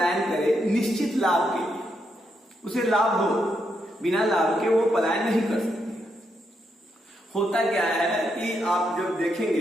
करे निश्चित लाभ के लिए, उसे लाभ हो, बिना लाभ के वो पलायन नहीं कर सकती। होता क्या है कि आप जब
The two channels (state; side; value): normal; both; correlation 0.80